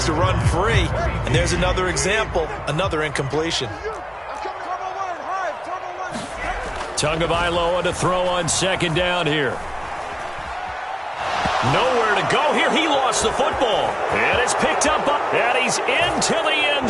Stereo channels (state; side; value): identical; both; correlation 1.00